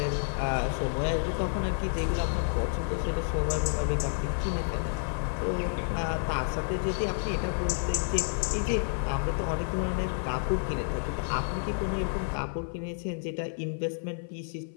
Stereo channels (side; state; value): right; silent; 57 dB below the other